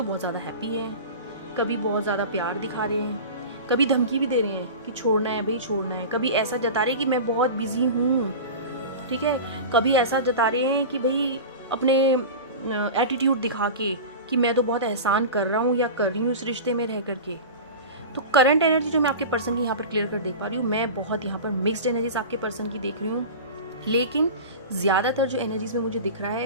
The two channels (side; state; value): both; inverted; correlation -0.30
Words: बहुत ज़्यादा हैप्पी है, कभी बहुत ज़्यादा प्यार दिखा रहे हैं, कभी धमकी भी दे रहे हैं कि छोड़ना है भाई छोड़ना है, कभी ऐसा जता रहे हैं कि मैं बहुत बिजी हूँ, ठीक है। कभी ऐसा जता रहे हैं कि भाई अपने एटीट्यूड दिखा के कि मैं तो बहुत एहसान कर रहा हूँ या कर रही हूँ इस रिश्ते में रह करके। तो करंट एनर्जी जो मैं आपके पर्सन की यहाँ पर क्लियर कर देख पा रही हूँ, मैं बहुत यहाँ पर मिक्स्ड एनर्जीज आपके पर्सन की देख रही हूँ। लेकिन ज़्यादातर जो एनर्जीज में मुझे दिख रहा